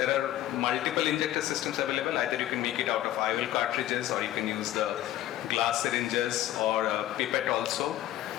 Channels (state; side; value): quieter; right; 13.6 dB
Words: are multiple injector systems available. Either you can make it out of IOL cartridges, or you can use the glass syringes or a pipette also.